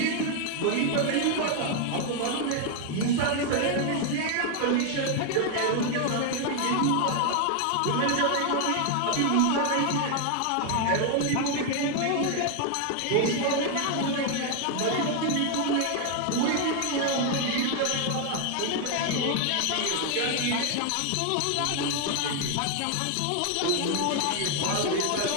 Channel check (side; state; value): both; different; correlation 0.00